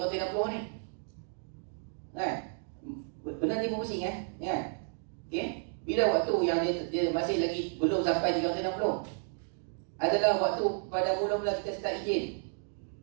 ni, kan? Benar dia pusing kan? Okay? Bila waktu yang dia masih lagi belum sampai 360 adalah waktu pada mula-mula kita start enjin.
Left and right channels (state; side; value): silent; left; 56 dB below the other